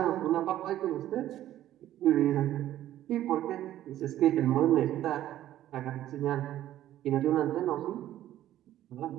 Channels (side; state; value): left; quieter; 12.9 dB